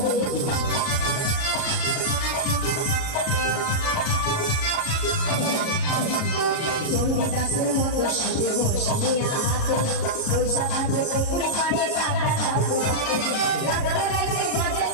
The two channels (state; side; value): late; right; 37 ms